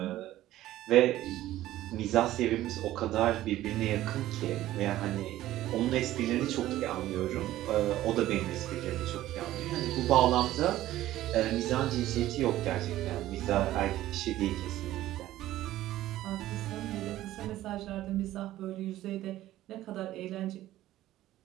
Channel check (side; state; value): left; quieter; 14.6 dB